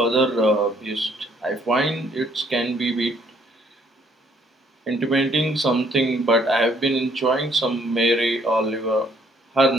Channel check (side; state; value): both; normal; correlation 0.65